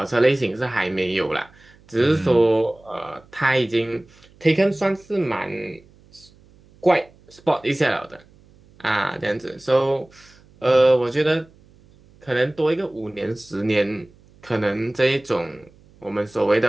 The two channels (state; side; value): noise; right; hum, 28 dB below the sound